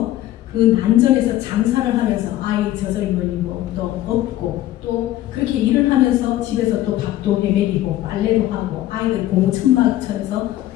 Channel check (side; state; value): right; quieter; 14.4 dB